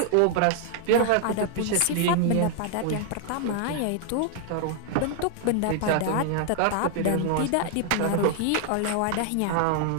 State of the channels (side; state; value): both; different; correlation 0.00